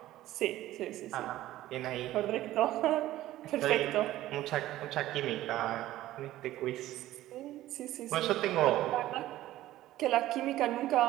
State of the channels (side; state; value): left; quieter; 14.9 dB